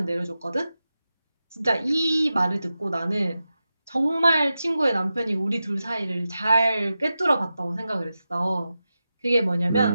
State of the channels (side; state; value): both; inverted; correlation -0.92